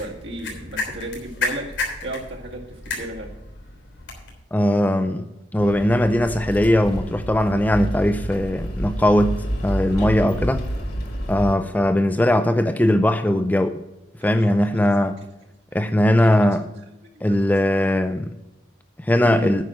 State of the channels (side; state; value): both; normal; correlation 0.90